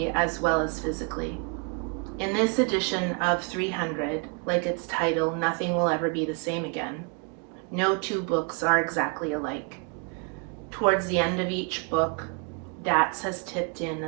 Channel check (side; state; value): left; quieter; 36.1 dB